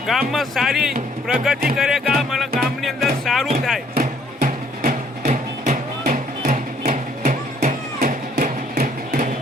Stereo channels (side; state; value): both; normal; correlation 0.63